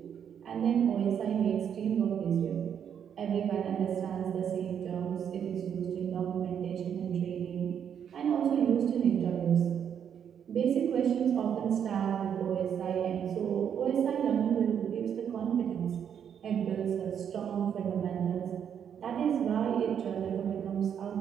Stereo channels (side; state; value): left; quieter; 8.4 dB